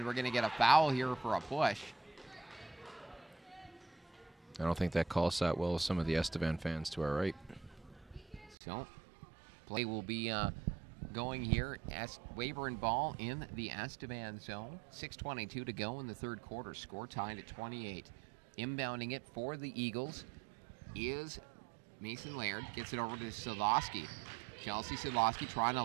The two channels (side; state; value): left; drops out; at 8.6 s